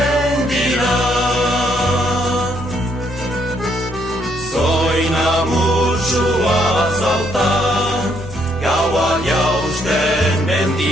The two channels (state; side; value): normal; both; correlation 0.71